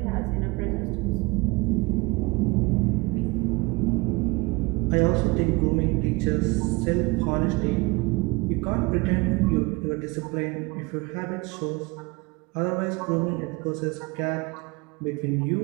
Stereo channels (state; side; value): quieter; left; 25.6 dB